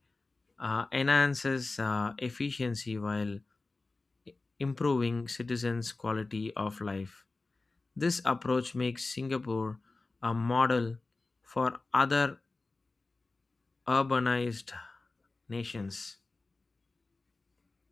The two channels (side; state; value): right; quieter; 3.5 dB